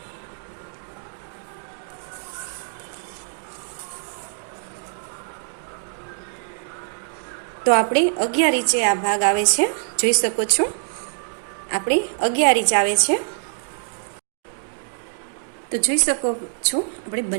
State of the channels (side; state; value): left; silent; digital silence